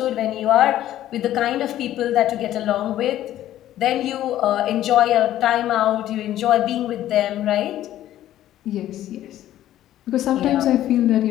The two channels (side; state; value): right; quieter; 12.9 dB